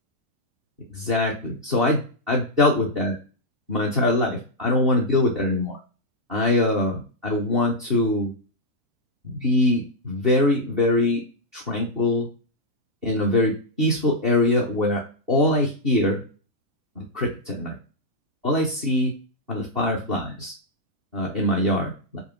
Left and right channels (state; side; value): late; left; 2.7 ms